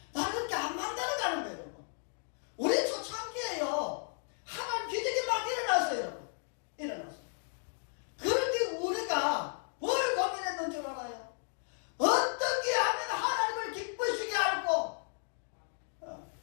나를 그렇게 안 만들어가는 거예요. 여러분. 우리 초창기에요. 하나님 기적이 막 일어났어요. 여러분. 일어났어요. 그런데 우리가 뭘 고민했는 줄 알아요? 어떻게 하면 하나님을 기쁘시게 할고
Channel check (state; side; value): silent; right; 55 dB below the other